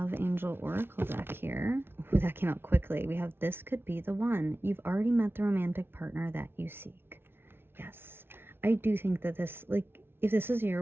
Angel Oracle deck here. Ooh, that came out quickly. We have this could be the one. You've already met the romantic partner that you seek. Yes. I do think that this, like, if this is your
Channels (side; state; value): left; late; 0.11 ms